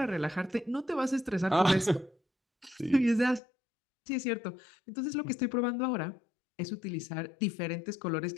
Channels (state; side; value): drops out; right; at 3.4 s